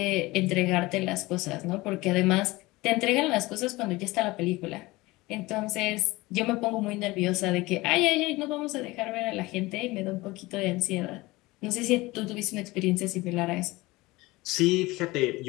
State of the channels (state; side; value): quieter; right; 20.9 dB